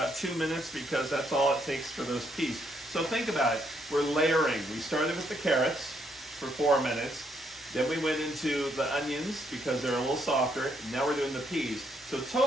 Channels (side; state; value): both; normal; correlation 0.74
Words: 2 minutes because that's all it takes for those peas. So think about it. We're layering. We started with the carrots for 4 minutes. Then we went into the onions because they're a little softer. Now we're doing the peas. So